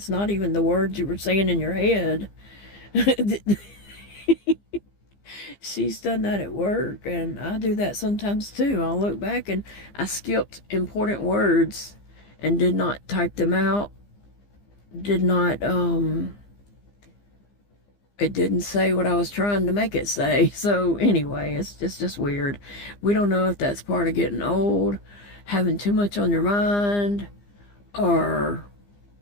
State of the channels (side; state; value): right; late; 15 ms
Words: not even the words you were saying in your head. She's done that at work, and I do that sometimes too. I'll look back and I skipped important words and did not type them out. Did not, it didn't say what I was trying to make it say. So anyway, it's just weird. We don't know if that's part of getting old, having too much on your mind, or